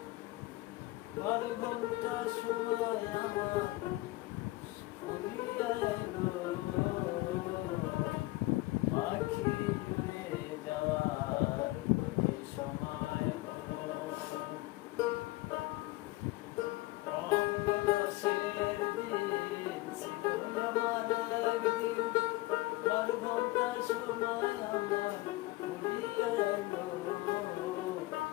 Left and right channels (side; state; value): right; quieter; 20.4 dB